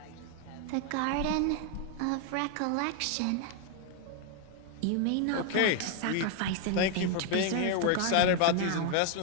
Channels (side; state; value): both; different; correlation 0.01